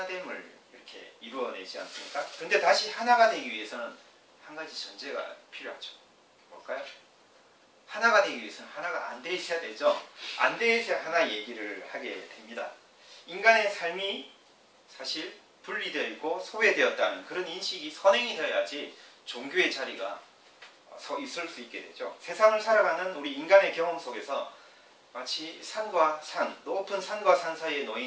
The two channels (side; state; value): both; identical; correlation 1.00